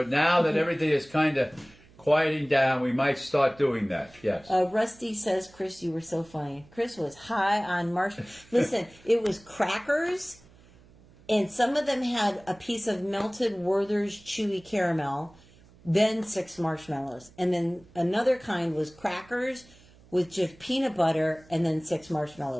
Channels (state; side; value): noise; right; hum, 26 dB below the sound